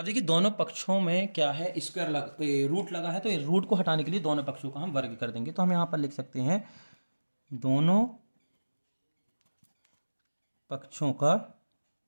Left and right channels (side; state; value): both; inverted; correlation -1.00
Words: देखिए दोनों पक्षों में क्या है, स्क्वायर रूट लगा है, तो रूट को हटाने के लिए दोनों पक्षों का हम वर्ग कर देंगे। तो हम यहाँ पर लिख सकते हैं दोनों पक्षों का